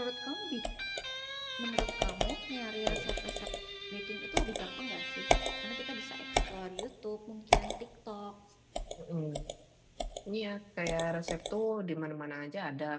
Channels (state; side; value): identical; both; correlation 1.00